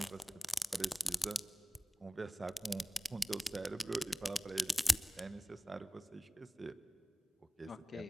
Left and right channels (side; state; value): both; normal; correlation 0.98